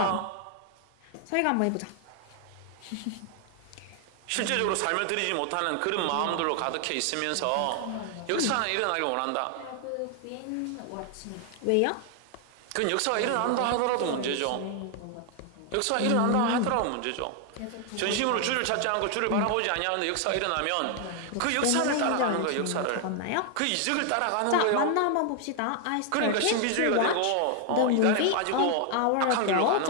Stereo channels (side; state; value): both; different; correlation 0.00